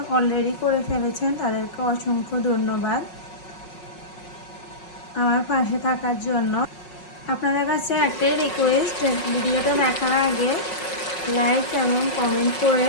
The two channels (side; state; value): right; late; 5.5 ms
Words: অলরেডি করে ফেলেছেন তাদেরকে অসংখ্য ধন্যবাদ আমার পাশে থাকার জন্য। আপনাদের কাছে একটাই রিকোয়েস্ট, ভিডিওটা দেখার আগে লাইক এবং কমেন্ট করে